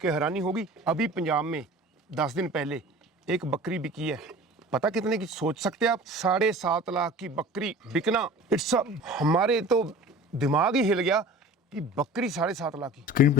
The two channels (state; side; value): normal; both; correlation 0.41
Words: हैरानी होगी, अभी पंजाब में 10 दिन पहले एक बकरी बिकी है, पता कितने की? सोच सकते हैं आप? 7.5 लाख की बकरी बिकना। इट्स हमारे तो दिमाग ही हिल गया कि बकरी 7.5 लाख की। स्क्रीन